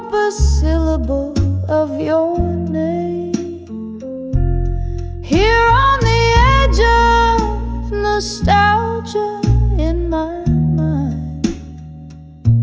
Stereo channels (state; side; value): identical; both; correlation 1.00